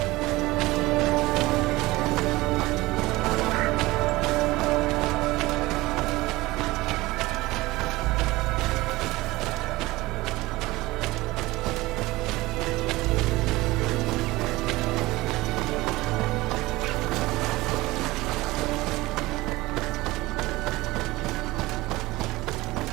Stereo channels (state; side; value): quieter; left; 19.7 dB